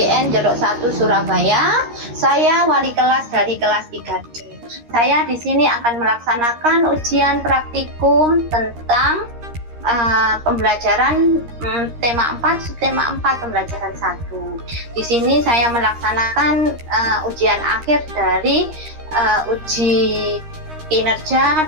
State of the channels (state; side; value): late; left; 13 ms